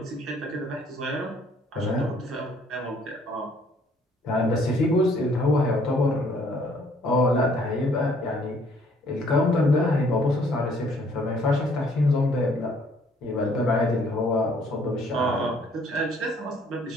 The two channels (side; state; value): both; normal; correlation 0.62